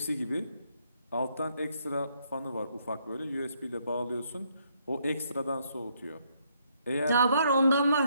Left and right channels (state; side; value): inverted; both; correlation -0.72